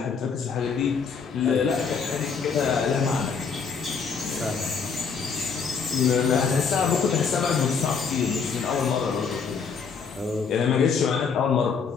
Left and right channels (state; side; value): quieter; right; 5.8 dB